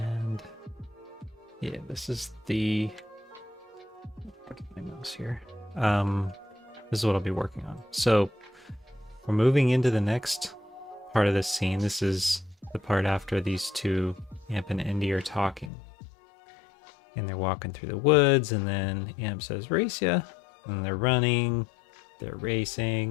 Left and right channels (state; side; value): drops out; right; at 15.7 s